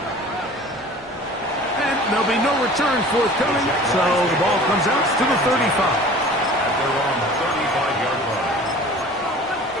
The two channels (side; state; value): both; normal; correlation 0.44